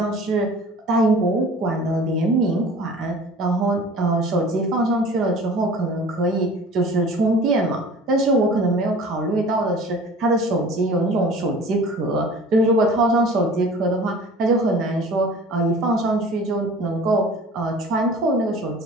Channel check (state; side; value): normal; both; correlation 0.44